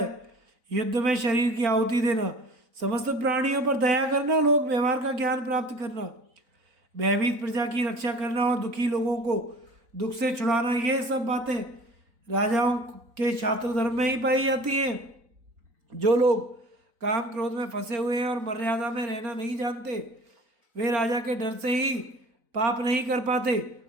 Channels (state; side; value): late; left; 4.0 ms